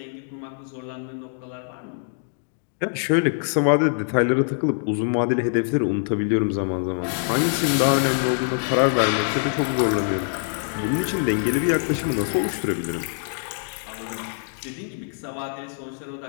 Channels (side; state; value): right; silent; digital silence